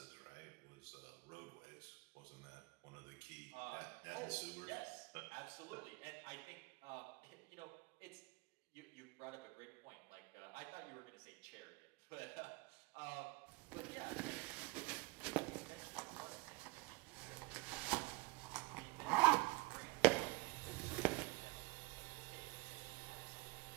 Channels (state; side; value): quieter; left; 25.2 dB